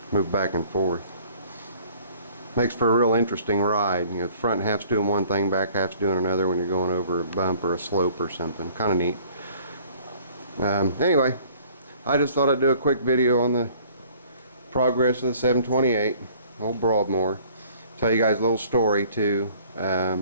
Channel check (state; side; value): inverted; both; correlation -0.54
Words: move back and forth. Makes for a real interesting ride. You know, the front half's doing one thing, back half's doing another when you're going over a bump or a slope or something. Kind of neat. Anyway, I just thought I'd do a quick video on the progress of the 728, old Broadmoor. Tell you guys a little story too.